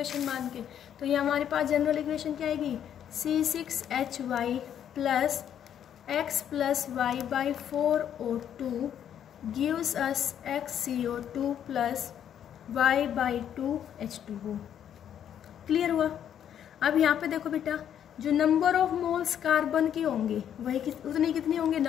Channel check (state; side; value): quieter; right; 9.6 dB